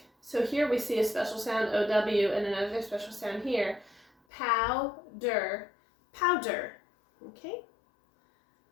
So here we see a special sound, O-W, and another special sound here, powder, powder. Okay?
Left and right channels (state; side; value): drops out; right; at 4.1 s